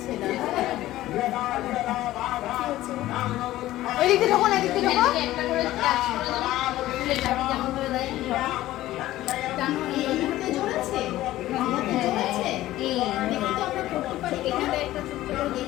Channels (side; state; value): right; quieter; 15.4 dB